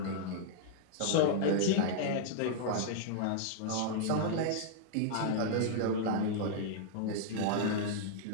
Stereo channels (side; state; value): both; different; correlation -0.01